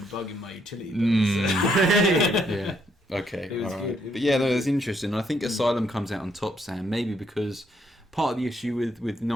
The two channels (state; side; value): normal; both; correlation 0.73